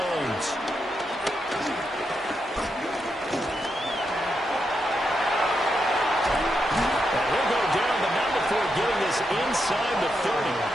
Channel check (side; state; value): both; normal; correlation 0.83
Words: Getting this inside the 30.